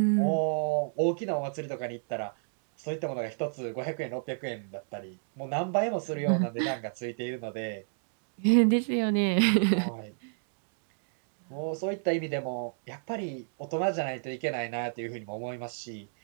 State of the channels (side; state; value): left; silent; digital silence